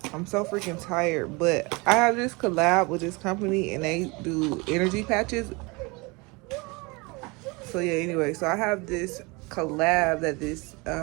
so freaking tired, but I have this collab with this company and they do energy patches. So yeah, anyway, so I have this collab that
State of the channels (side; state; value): left; quieter; 26.8 dB